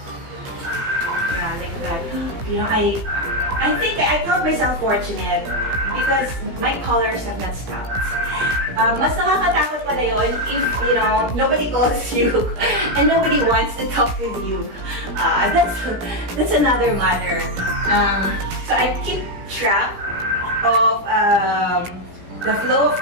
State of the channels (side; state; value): left; late; 17 ms